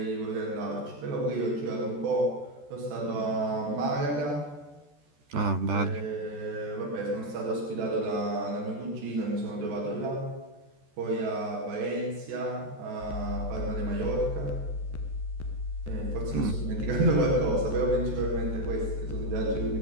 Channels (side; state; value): left; late; 14 ms